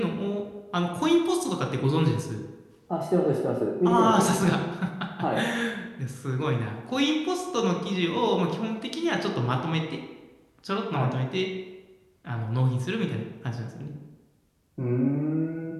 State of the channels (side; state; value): both; identical; correlation 1.00